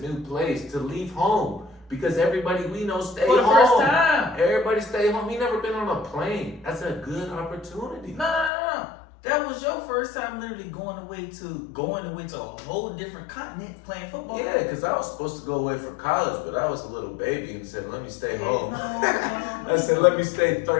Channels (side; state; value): right; drops out; at 8.5 s